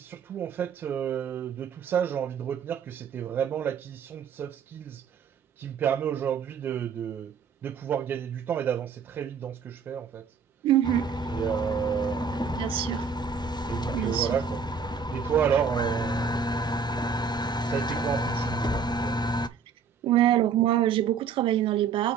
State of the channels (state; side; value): quieter; left; 6.1 dB